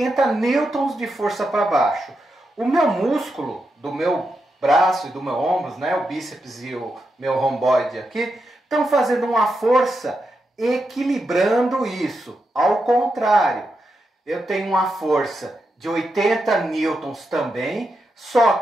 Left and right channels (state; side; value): normal; both; correlation 0.86